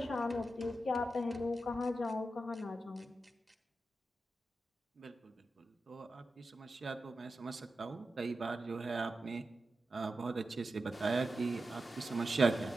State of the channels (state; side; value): normal; both; correlation 0.90